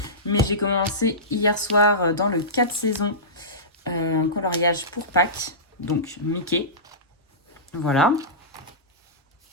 Mais j'ai commencé hier soir dans le 4 saisons un coloriage pour Pâques, donc Mickey. Voilà.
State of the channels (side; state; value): both; normal; correlation -0.20